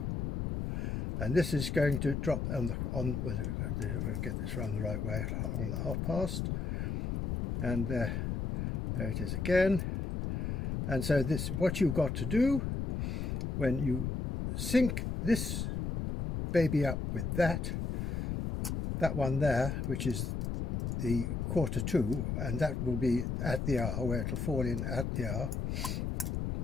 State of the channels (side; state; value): left; noise; rumble, 2 dB below the sound